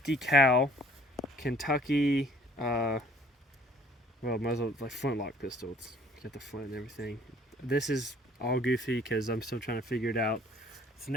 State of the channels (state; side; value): normal; both; correlation 0.55